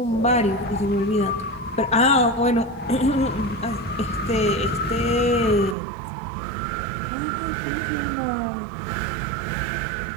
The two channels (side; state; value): left; drops out; at 5.8 s